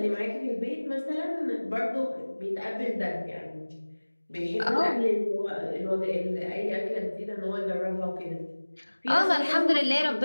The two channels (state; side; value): inverted; both; correlation -1.00